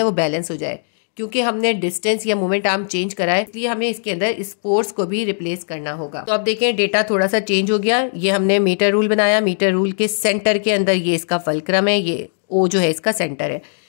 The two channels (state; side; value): silent; right; digital silence